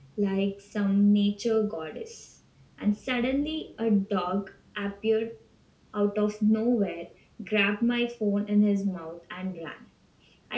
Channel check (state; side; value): identical; both; correlation 1.00